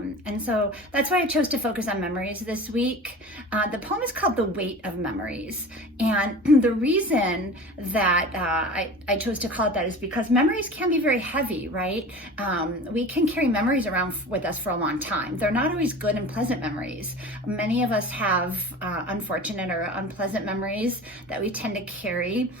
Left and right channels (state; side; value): normal; both; correlation 0.37